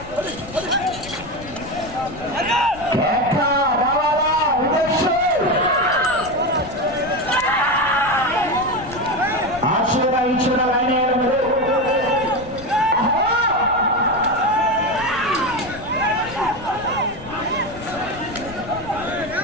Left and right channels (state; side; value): noise; left; rumble, 16 dB below the sound